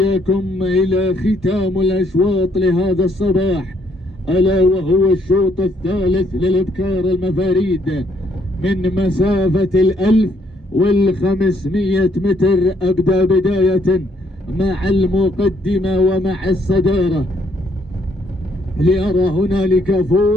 إلى ختام الأشواط لهذا الصباح، ألا وهو الشوط الثالث للإبكار المفاريد من مسافة 1500 متر. أبدأ بداية مع المقدمة ومع الصدارة، لأرى هنالك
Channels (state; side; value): normal; both; correlation 0.69